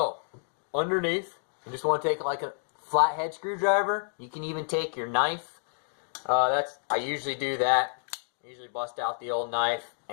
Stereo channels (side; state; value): right; silent; digital silence